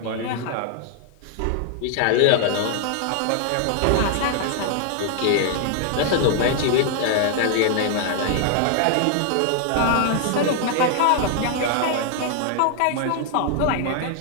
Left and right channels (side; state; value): both; different; correlation 0.00